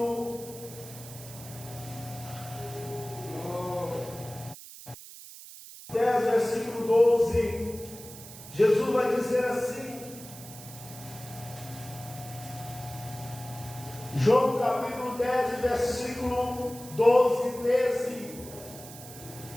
10, versículo 12, Jesus vai dizer assim. João capítulo 10, versículo 12 e 13.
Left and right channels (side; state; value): right; noise; hiss, 15 dB below the sound